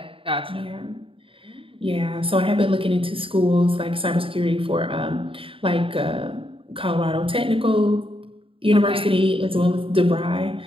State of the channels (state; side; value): late; left; 0.26 ms